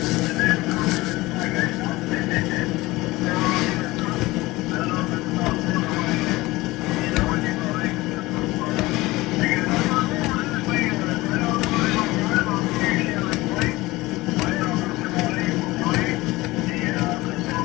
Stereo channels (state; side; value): quieter; right; 19.9 dB